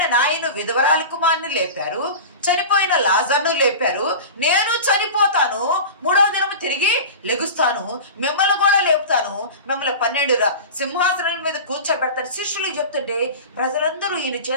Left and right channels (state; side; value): inverted; both; correlation -0.31